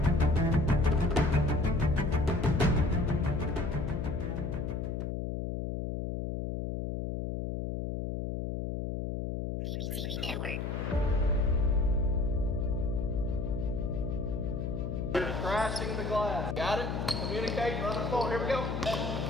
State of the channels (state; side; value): noise; left; hum, 3 dB below the sound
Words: BBTV Network. Crashing the glass. Got it? Communicating on the phone. Here we go.